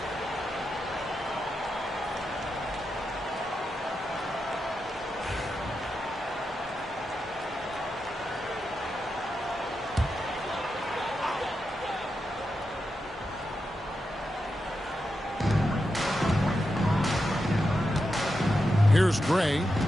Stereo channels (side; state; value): both; normal; correlation 0.87